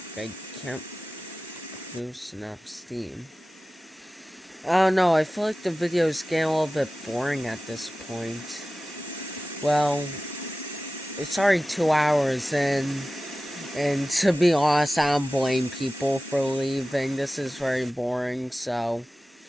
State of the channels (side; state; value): both; normal; correlation 0.96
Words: I can't produce enough steam. Oh no, I feel like the video's getting a little bit boring at this point. Well, it's already 2 hours in, and to be honest, I don't blame people for leaving. This is very boring, so